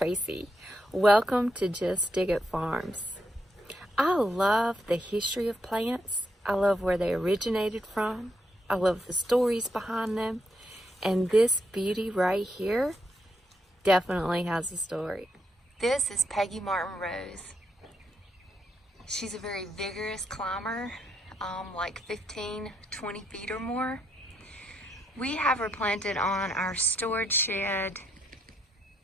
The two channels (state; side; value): normal; both; correlation 0.78